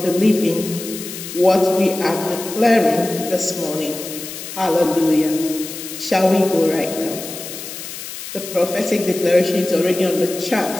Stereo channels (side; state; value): left; noise; hiss, 10 dB below the sound